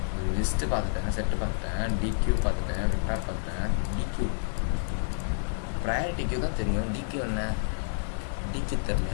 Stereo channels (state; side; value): silent; right; 57 dB below the other